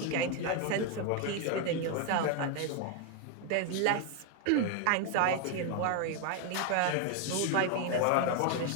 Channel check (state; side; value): different; both; correlation 0.01